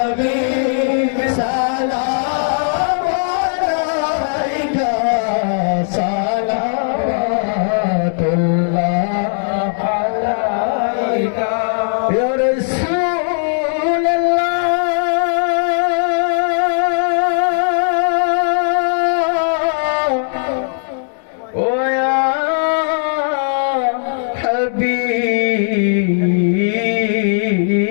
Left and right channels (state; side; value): silent; right; digital silence